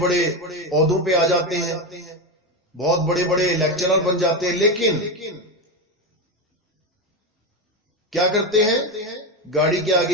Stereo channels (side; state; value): both; normal; correlation 0.14